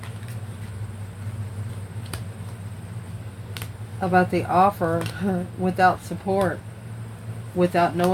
about the offer without support, without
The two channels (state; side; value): identical; both; correlation 1.00